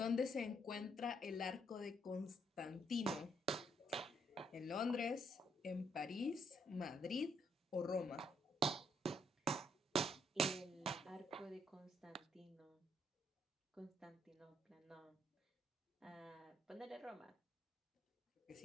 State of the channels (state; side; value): normal; both; correlation 0.73